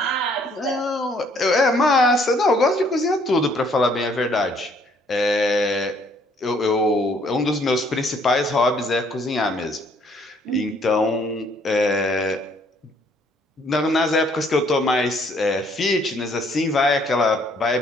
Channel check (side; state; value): both; normal; correlation 0.64